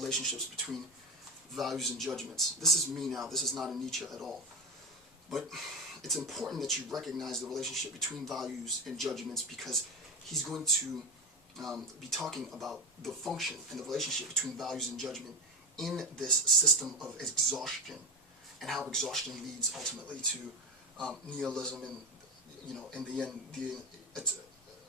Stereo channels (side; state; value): both; normal; correlation 0.18